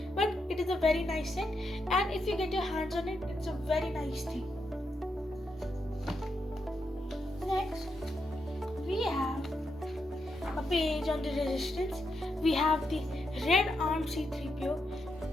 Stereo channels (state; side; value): normal; both; correlation 0.82